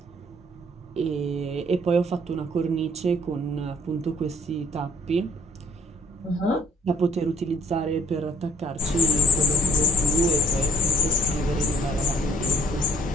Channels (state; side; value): normal; both; correlation 0.60